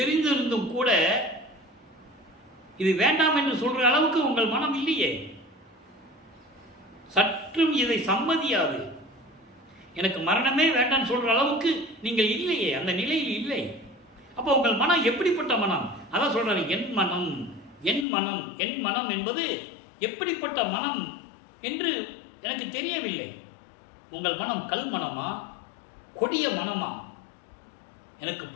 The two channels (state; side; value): drops out; right; at 18.1 s